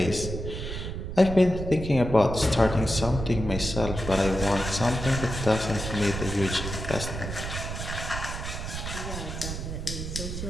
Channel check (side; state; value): right; noise; rumble, 6 dB below the sound